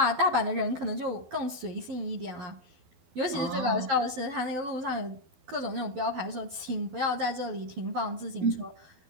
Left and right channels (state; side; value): late; left; 12 ms